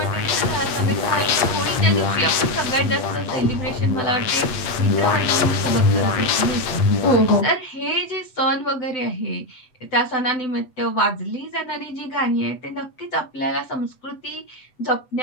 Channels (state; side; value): late; right; 7.9 ms